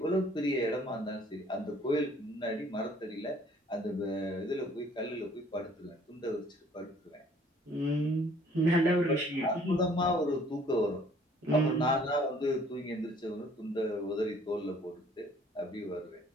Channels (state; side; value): normal; both; correlation 0.58